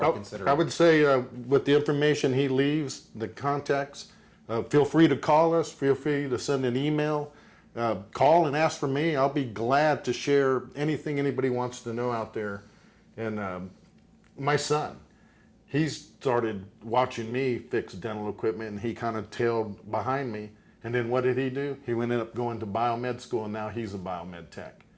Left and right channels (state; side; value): identical; both; correlation 1.00